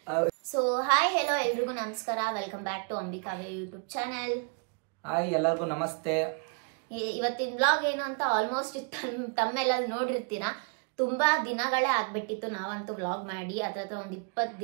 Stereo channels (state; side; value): quieter; left; 37.1 dB